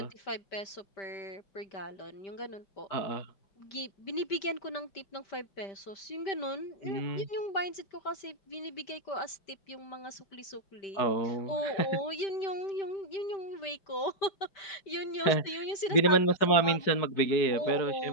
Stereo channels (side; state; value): right; late; 5.1 ms